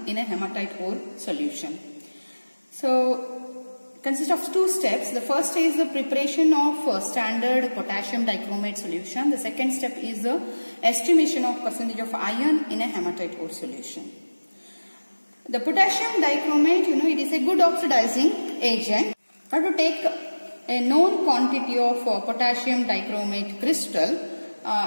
in a hematite ore solution. So, consists of two steps. The first is the preparation of standard potassium dichromate solution. The second step is the estimation of percentage of iron in a hematite ore solution. The potassium dichromate, it is a good oxidizing agent. You have to take a known quantity of potassium dichromate crystal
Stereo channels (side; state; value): both; inverted; correlation -1.00